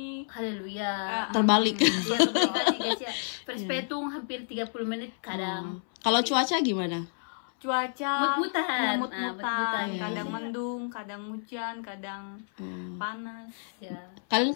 Haleluya. Terbalik. Ya kebalik guys ya. Perspetung hampir 30 menit kadang. Kalau cuaca gimana? cuaca Mut-mutan. mut-mutan. Iya, Kadang iya. mendung, kadang hujan, kadang panas. Ya. Kalian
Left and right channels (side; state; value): right; silent; 58 dB below the other